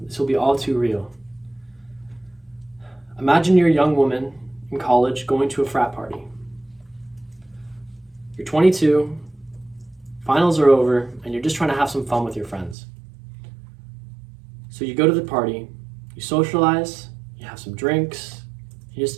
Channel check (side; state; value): left; drops out; at 12.8 s